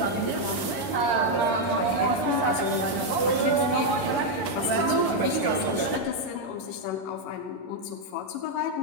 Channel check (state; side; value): late; right; 11 ms